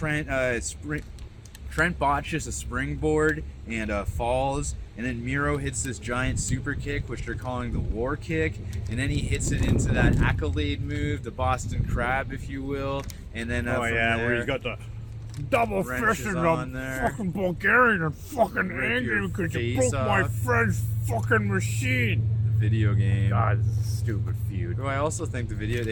Trent botches a springboard and falls. and then Miro hits this giant super kick, which they're calling the war kick, and then he hits it into that accolade move, the Boston Crab, if you will, and then where he's got the double fist and I'm fucking Bulgarian and fucking angry because you broke my friend's fucking machine. Video game. God, this is a stupid feud. I also think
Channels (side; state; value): both; identical; correlation 1.00